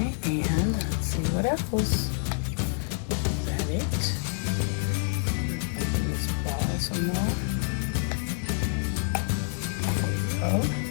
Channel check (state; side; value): silent; right; digital silence